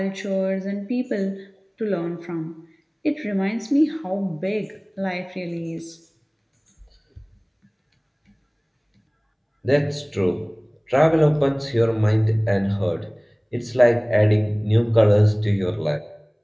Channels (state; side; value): identical; both; correlation 1.00